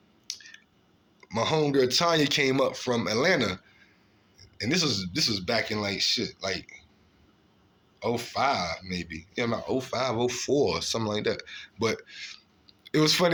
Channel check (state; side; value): identical; both; correlation 1.00